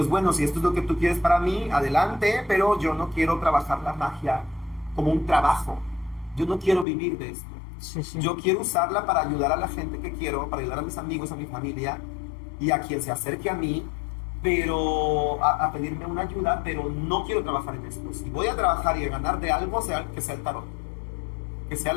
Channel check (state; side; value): drops out; right; at 6.9 s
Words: bueno, si esto es lo que tú quieres para mí, adelante, pero yo no quiero trabajar la magia como un trabajo, yo no quiero vivir de esto. Sí, sí. Yo quiero usarla para ayudar a la gente que quiero, para ayudar a mis amigos, a mi familia y a quien se acerque a mí, pero a pedirme una ayuda, pero no quiero trabajar en esto. Si voy a trabajar y a ganar de algo, que sea el tarot, que sea